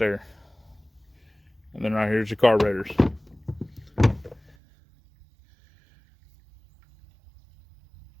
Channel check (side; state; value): left; drops out; at 4.5 s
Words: And then right here's your carburetors.